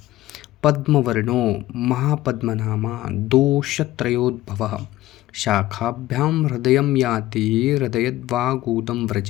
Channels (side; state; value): right; quieter; 15.8 dB